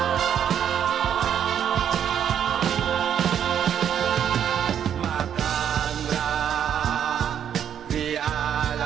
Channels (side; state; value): left; quieter; 9.1 dB